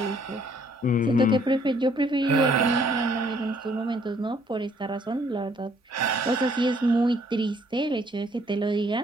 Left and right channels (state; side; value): normal; both; correlation 0.64